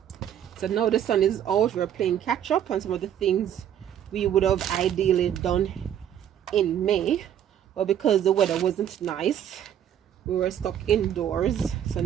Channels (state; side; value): quieter; left; 10.0 dB